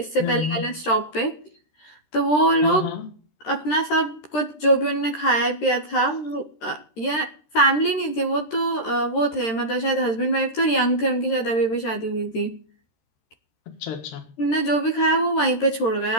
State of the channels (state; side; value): late; right; 13 ms